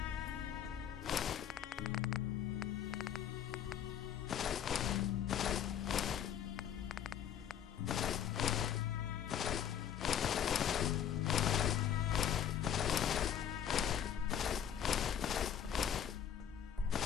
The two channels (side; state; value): right; quieter; 9.2 dB